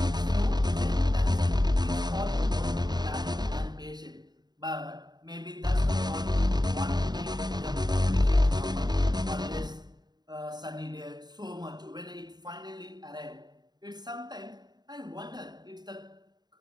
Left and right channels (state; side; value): late; left; 0.20 ms